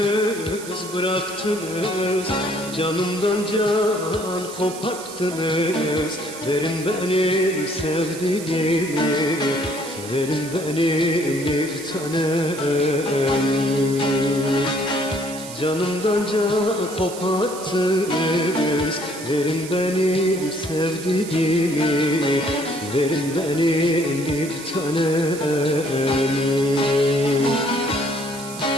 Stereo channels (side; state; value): right; noise; hiss, 13 dB below the sound